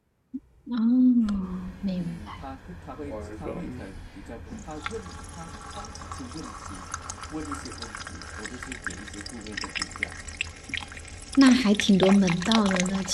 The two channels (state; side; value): identical; both; correlation 1.00